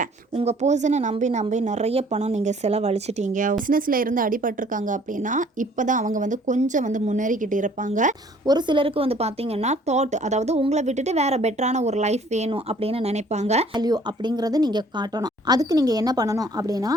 உங்கள் பர்சனை நம்பி நிறைய பணம் நீங்கள் செலவழிச்சிட்டீங்க. பிஸ்னஸில் இருந்து அடிபட்டிருக்காங்க அப்படின்னா இப்போ தான் அவங்க கொஞ்சம் முன்னேறிக்கிட்டு இருப்பாங்க. ஒரு சிலருக்கு பார்த்தீங்கன்னா தாட், அதாவது உங்களை விட்டுட்டு வேற பெட்டரான ஒரு லைஃப் வேணும் அப்படின்னு நினைப்பாங்க. வேல்யூ அப்படிங்கிறது நீங்கள் காட்டணும். அதுக்கு நீங்கள் என்ன பண்ணணும் அப்படின்னா,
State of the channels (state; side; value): normal; both; correlation 0.57